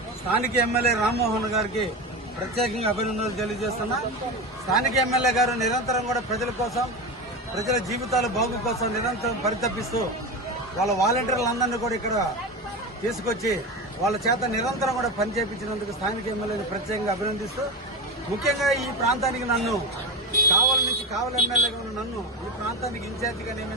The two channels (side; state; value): both; normal; correlation 0.21